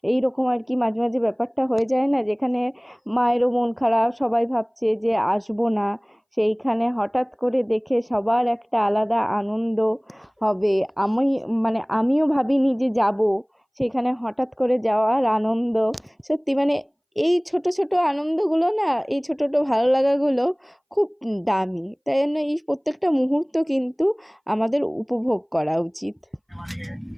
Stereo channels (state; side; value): identical; both; correlation 1.00